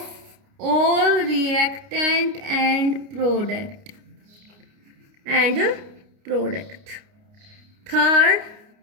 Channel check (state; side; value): late; left; 29 ms